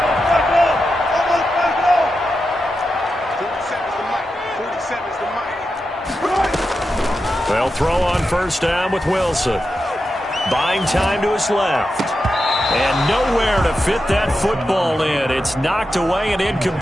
They'll throw on first down with Wilson. Buying time to his left. And nowhere to fit that football in. It's knocked away and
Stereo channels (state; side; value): normal; both; correlation 0.89